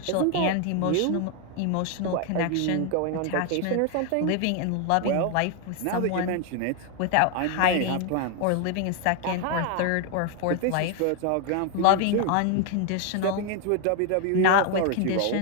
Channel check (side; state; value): both; different; correlation 0.01